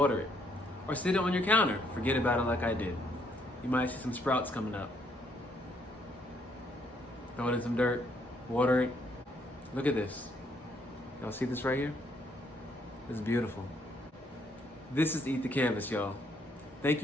it. Or sit it on your counter. Forget about it like I did. You might see some sprouts coming up. Throw it in some dirt. Water it. Look at this. Y'all see this right here? It's beautiful. This is Eat the Canvas, y'all. Thank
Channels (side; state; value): both; normal; correlation 0.70